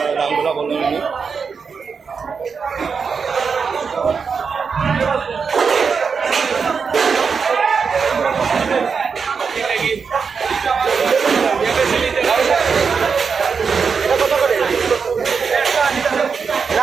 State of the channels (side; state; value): left; quieter; 5.7 dB